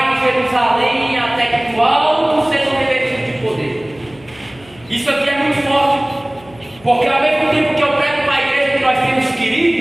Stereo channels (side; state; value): left; noise; hum, 25 dB below the sound